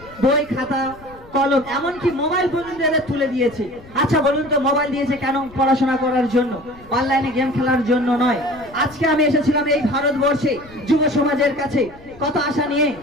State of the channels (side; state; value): left; noise; rumble, 22 dB below the sound